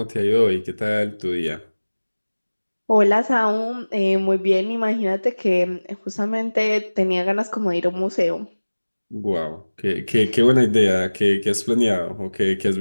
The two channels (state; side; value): inverted; both; correlation -1.00